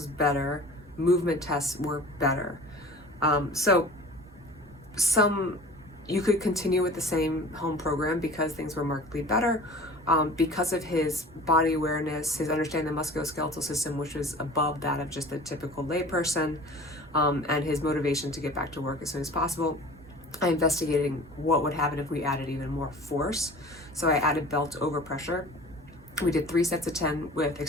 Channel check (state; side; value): normal; both; correlation 0.42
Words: better, movement tests were better. So some you could continue with the same home program because things were markedly better. Because of his body awareness, his understanding the musculoskeletal system, which was above that of just a typical layperson, and his motivation to get back to work as soon as possible, I investigated what would happen if we added even more force. So I added belt overpressure. We did 3 sets of 10 with